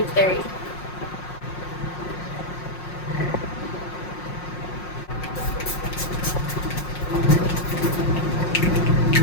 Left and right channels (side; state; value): right; late; 5.5 ms